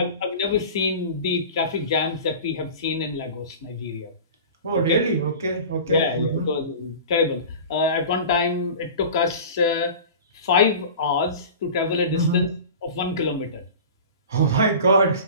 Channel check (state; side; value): inverted; both; correlation -0.36